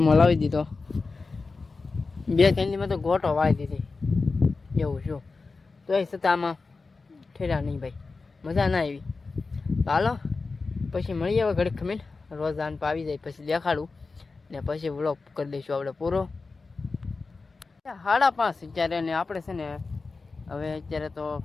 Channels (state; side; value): quieter; right; 4.1 dB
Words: લાવી દીધો. 2-3 દીમાં તો ગોટો વાળી દીધી એવું શું. તો એ છતાં આમાં ઠેરા નહીં ભાઈ, મજા ના આવી. તો હાલો પછી મળીએ હવે ઘડીક ખમીને. રોજ આન આવી જાય પછી દેખાડું ને પછી વ્લોગ કરી દઈશું આપણે પૂરો. 5:30 અત્યારે ને આપણે છે ને હવે અત્યારે તો